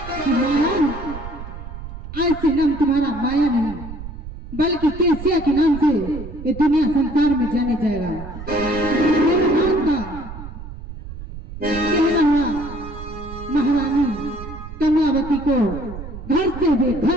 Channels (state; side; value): noise; right; rumble, 11 dB below the sound